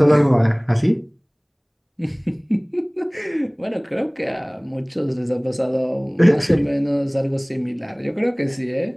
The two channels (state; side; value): identical; both; correlation 1.00